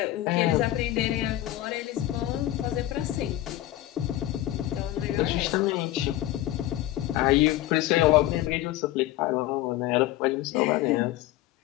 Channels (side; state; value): right; quieter; 14.8 dB